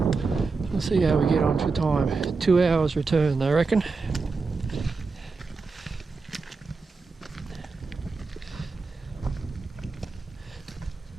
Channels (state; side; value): quieter; left; 4.3 dB